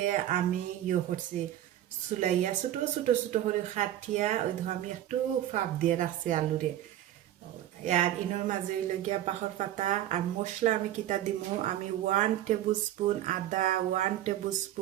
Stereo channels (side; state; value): left; quieter; 12.4 dB